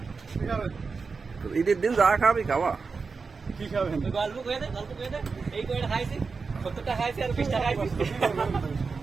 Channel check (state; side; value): quieter; left; 4.8 dB